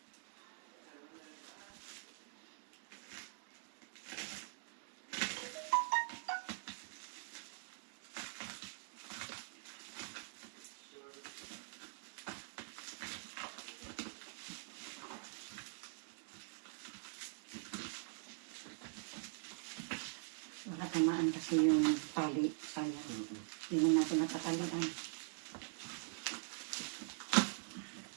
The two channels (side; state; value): left; silent; digital silence